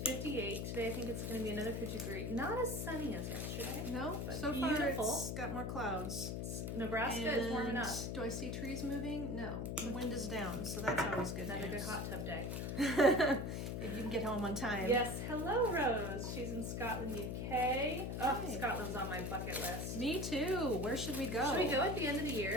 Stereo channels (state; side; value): noise; left; hum, 2 dB below the sound